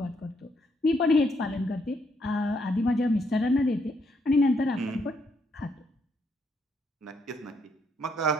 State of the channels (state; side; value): normal; both; correlation 0.74